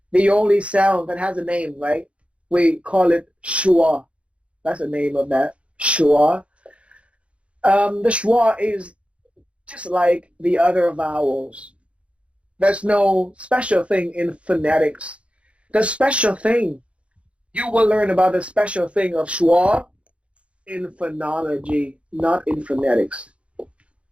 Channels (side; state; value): left; late; 0.061 ms